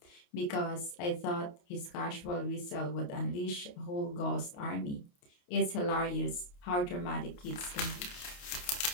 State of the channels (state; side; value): late; right; 28 ms